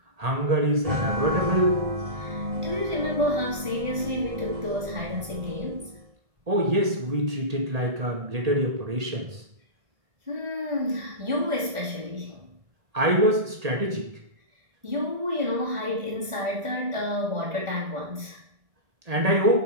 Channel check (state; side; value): late; left; 1.4 ms